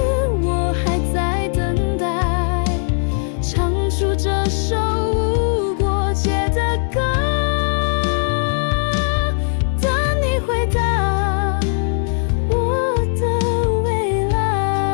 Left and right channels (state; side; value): silent; right; digital silence